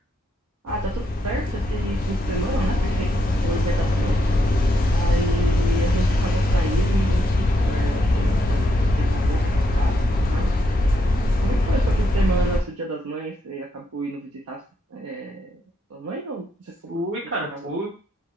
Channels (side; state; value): both; normal; correlation 0.79